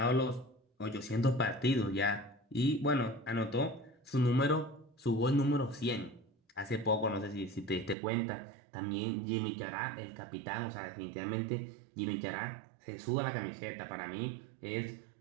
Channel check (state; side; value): drops out; left; at 8.0 s